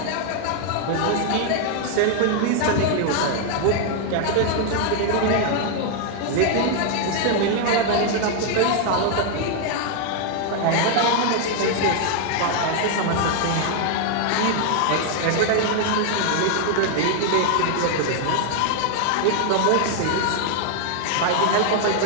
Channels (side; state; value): both; different; correlation 0.00